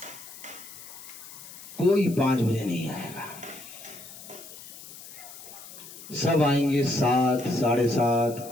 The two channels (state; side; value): noise; left; hiss, 15 dB below the sound